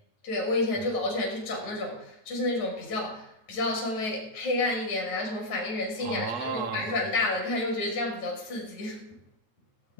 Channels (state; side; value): late; right; 9.4 ms